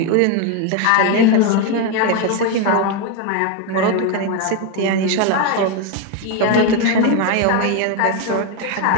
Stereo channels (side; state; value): both; different; correlation 0.02